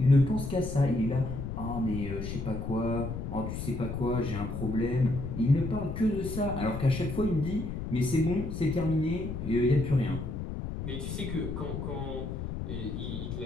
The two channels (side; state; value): left; noise; rumble, 5 dB below the sound